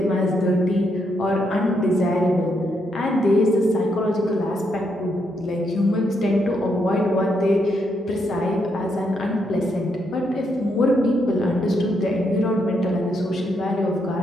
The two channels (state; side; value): normal; both; correlation 0.78